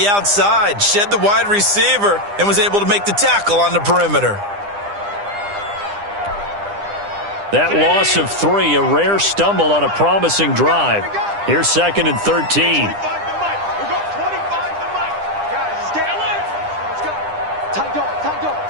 outside? Shed the wide receiver and was able to make the tackle on the perimeter. That loss of 3, a rare stumble on a promising drive. Here's 2nd and 13.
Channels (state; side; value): late; left; 9.9 ms